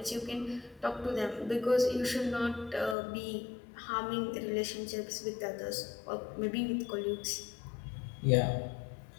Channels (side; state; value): right; drops out; at 3.0 s